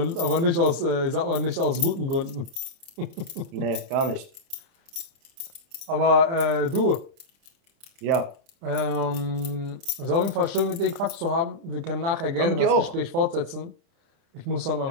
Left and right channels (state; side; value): late; left; 30 ms